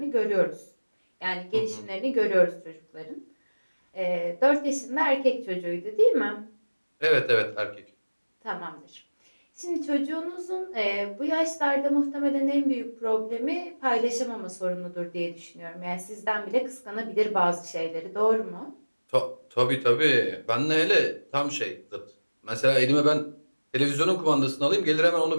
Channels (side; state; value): both; inverted; correlation -1.00